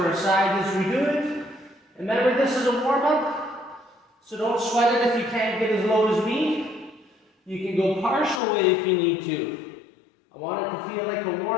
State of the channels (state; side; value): drops out; right; at 8.4 s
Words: our side as we do it. And remember, this is a warm-up, so don't sweat it if you can't get as low as me. You can go partial way if you need to. I want it to feel like a